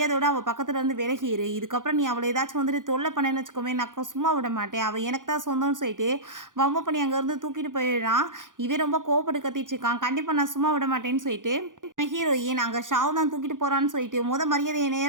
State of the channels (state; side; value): late; left; 0.88 ms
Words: அவள் பக்கத்தில் இருந்து விலகிரு, இதுக்கப்புறம் நீ அவளை ஏதாச்சும் வந்துட்டு தொல்லை பண்ணேன்னு வச்சுக்கோமே நான் சும்மா விட மாட்டேன், அவள் எனக்கு தான் சொந்தம்னு சொல்லிட்டு வம்பு பண்ணி அங்கேருந்து தூக்கிட்டு போயிடுறான். இவன் ரொம்ப கோவப்பட்டு கத்திட்டு இருக்கான். கண்டிப்பாக நான் சும்மா விட மாட்டேன்னு சொல்லிட்டு ஹீரோயின் அங்கே ஷாவ் தான் தூக்கிட்டு போகிறான்னு சொல்லிட்டு மரியாதையை என்னை